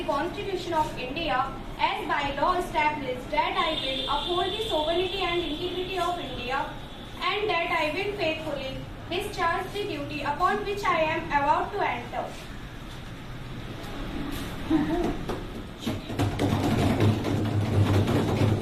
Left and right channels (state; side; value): identical; both; correlation 1.00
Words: Constitution of India as by law established, that I will uphold the sovereignty and integrity of India, and that I will faithfully discharge the duty upon which I am about to enter.